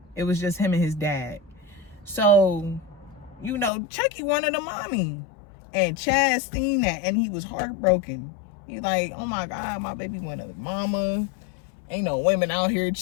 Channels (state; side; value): drops out; right; at 3.7 s